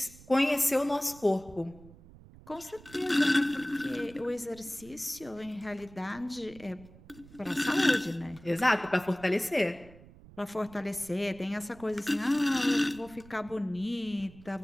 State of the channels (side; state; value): right; noise; rumble, 21 dB below the sound